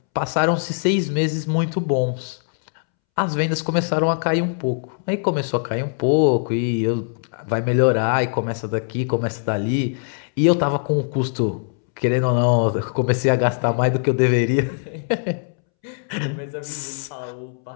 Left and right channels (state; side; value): silent; right; 65 dB below the other